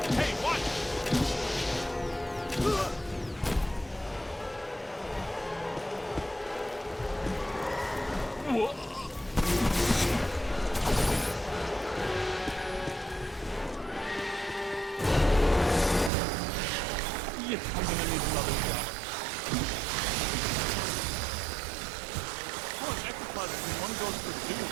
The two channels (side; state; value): left; drops out; at 16.1 s